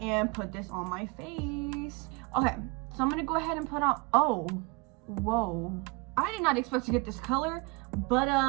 put this on my face. Okay, so I'm gonna go ahead and put on, oh, whoa. I did not expect to get this color, but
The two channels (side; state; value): left; quieter; 27.6 dB